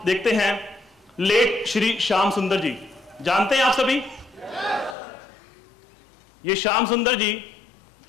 देखते हैं, लेट श्री श्याम सुंदर जी, जानते हैं आप सभी? ये श्याम सुंदर जी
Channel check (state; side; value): drops out; right; at 5.0 s